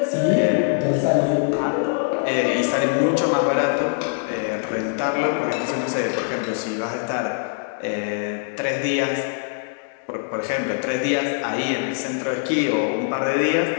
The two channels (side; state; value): right; silent; 64 dB below the other